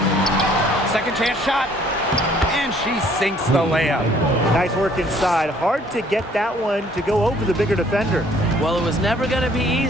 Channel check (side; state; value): both; normal; correlation 0.59